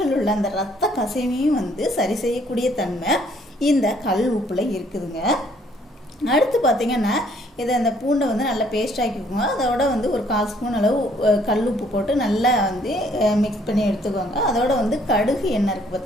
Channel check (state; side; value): normal; both; correlation 0.63